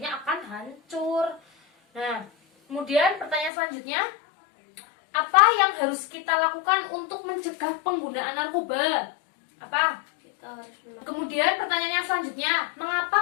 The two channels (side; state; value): right; drops out; at 3.5 s